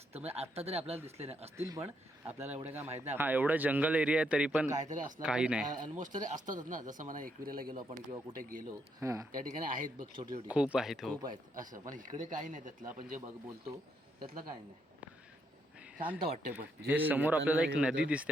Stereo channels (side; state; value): both; normal; correlation 0.76